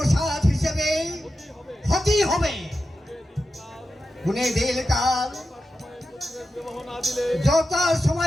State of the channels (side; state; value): both; normal; correlation 0.91